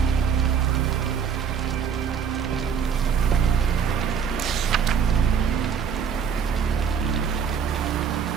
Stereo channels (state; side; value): quieter; left; 7.0 dB